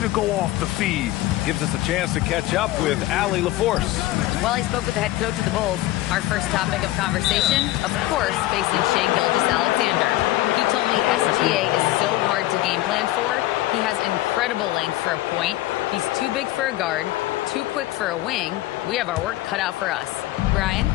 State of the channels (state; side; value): quieter; right; 16.5 dB